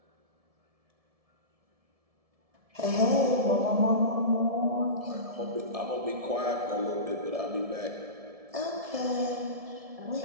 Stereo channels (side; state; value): left; late; 1.7 ms